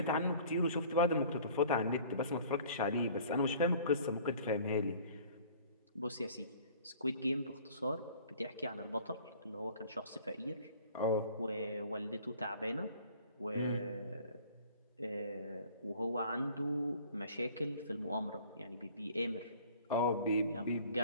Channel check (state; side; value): inverted; both; correlation -0.49